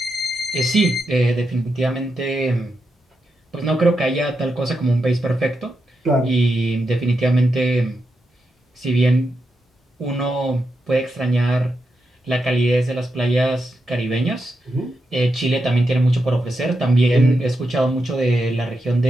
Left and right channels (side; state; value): both; normal; correlation 0.86